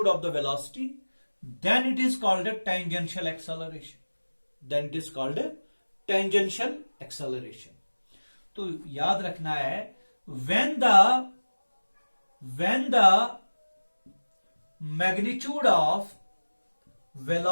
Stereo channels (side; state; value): both; inverted; correlation -1.00